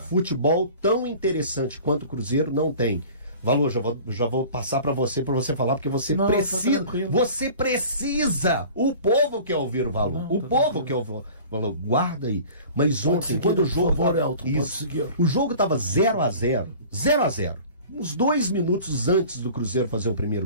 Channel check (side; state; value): both; inverted; correlation -0.43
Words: Futebol tão interessante quanto o Cruzeiro não tem. Valor, já vou passar para você falar, porque você Não, tá precisa. tranquilo. Você precisa. O povo quer ouvir o Valor. Não, O tá povo quer ouvir o Valor. Guarda aí. Mas Pode ontem, seguir, quando o por jogo. favor, Elton, pode Isso. seguir. O jogo tava 0-0. 0-0. Uns 2 minutos antes do Cruzeiro fazer o